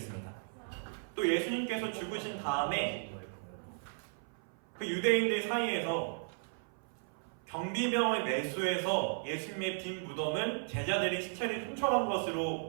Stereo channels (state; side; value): silent; left; 54 dB below the other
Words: 또 예수님께서 죽으신 다음에 그 유대인들 사이에서 경비병을 매수해서 예수님의 빈 무덤을 제자들이 시체를 훔쳐간